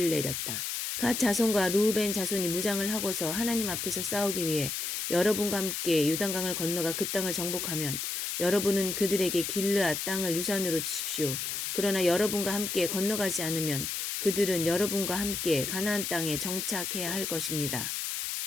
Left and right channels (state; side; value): noise; left; hiss, 3 dB below the sound